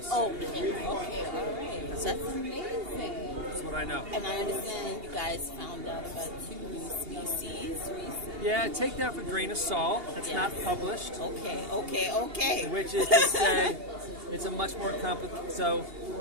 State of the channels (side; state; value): left; late; 2.8 ms